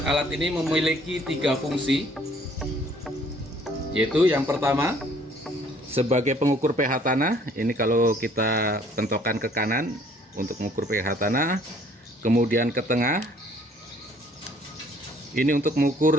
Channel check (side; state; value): both; normal; correlation 0.59